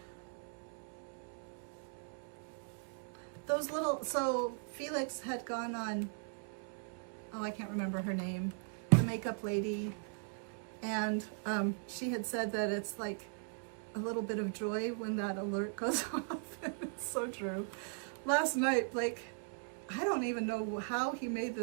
Those little, so Felix had gone on, oh, I can't remember her name, the makeup lady, and she had said that it's like a little bit of joy when that alert goes off. It's so true. Last night, like, I don't even know how he made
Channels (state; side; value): silent; left; 52 dB below the other